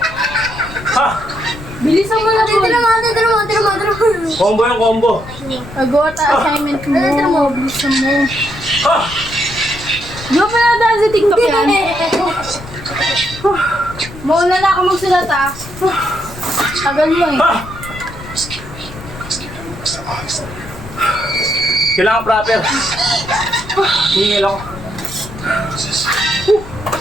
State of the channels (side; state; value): left; noise; rumble, 14 dB below the sound